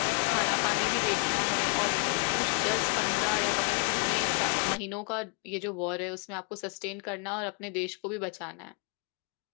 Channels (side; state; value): right; quieter; 38.7 dB